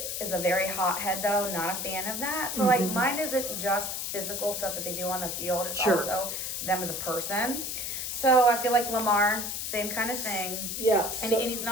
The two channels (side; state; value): left; noise; hiss, 3 dB below the sound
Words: a very hothead though, not a fan of that. So mine isn't just physical stuff that they do on the field. It's also them as a person. So I feel like Lamar, same kind of thing. Yeah. And he's